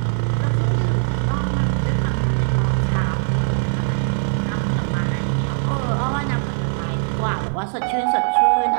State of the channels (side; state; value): left; silent; digital silence